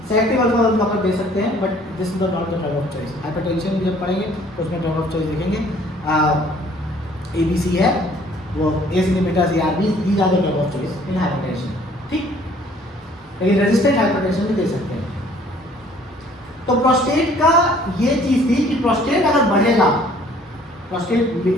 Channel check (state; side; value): normal; both; correlation 0.57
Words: सेलेक्टिव अल्फा 1 ब्लॉकर दे सकते हैं, but this is not the drug of choice. Hypertension जब पढ़ेंगे तो उसमें ड्रग ऑफ चॉइस देखेंगे। ABC है वो, ACE inhibitors, ARBs, these are the drug of choice in hypertension. ठीक, लेकिन रेजिस्टेंट हाइपरटेंशन भी दे सकते हैं। तो प्रोस्टेट का ये चीज थी कि प्रोस्टेट अगर बढ़ेगा, prostate